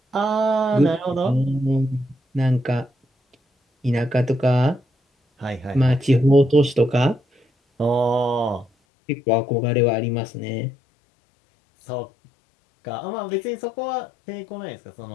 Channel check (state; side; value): drops out; right; at 8.7 s